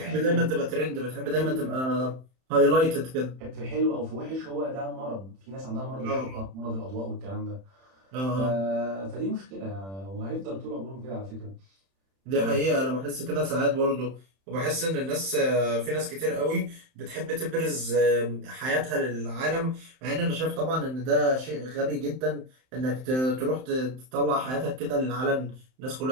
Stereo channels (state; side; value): late; left; 31 ms